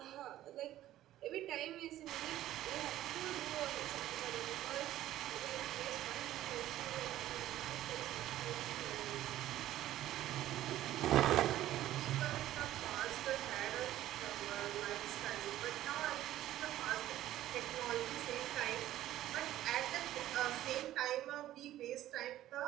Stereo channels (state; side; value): quieter; left; 13.7 dB